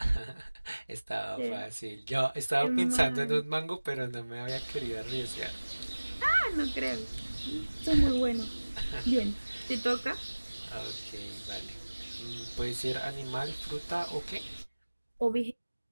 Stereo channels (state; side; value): inverted; both; correlation -1.00